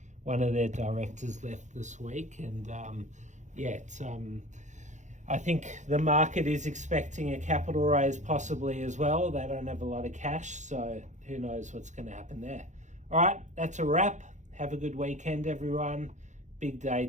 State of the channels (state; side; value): late; left; 0.35 ms